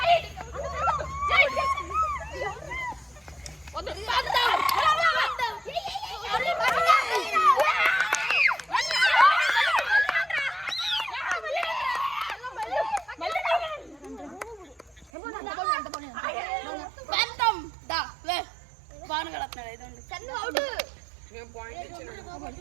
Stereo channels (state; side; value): drops out; left; at 15.1 s